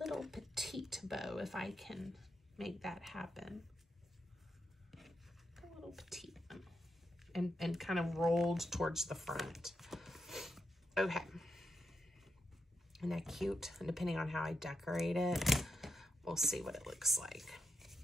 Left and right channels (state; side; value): normal; both; correlation 0.86